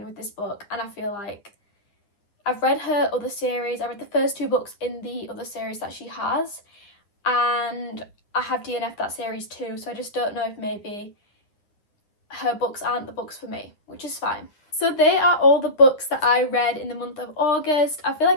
with this book. And I feel like I've read her other series. I read the first 2 books in the other series that she has. And I have DNF'd that series too. So I just don't know if maybe her books aren't the books for me, which is fine. So they are all the books that I read in the month of August. I feel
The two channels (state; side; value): late; right; 9.9 ms